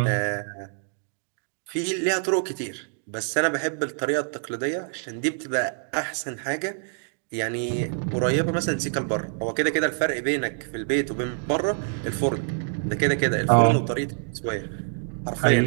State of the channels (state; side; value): silent; left; 61 dB below the other